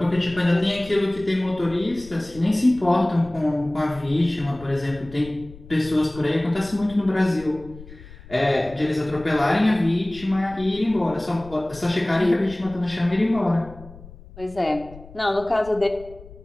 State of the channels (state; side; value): noise; left; rumble, 19 dB below the sound